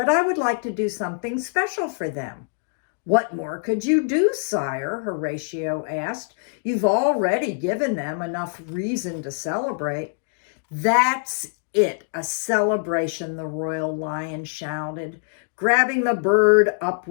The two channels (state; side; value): silent; right; digital silence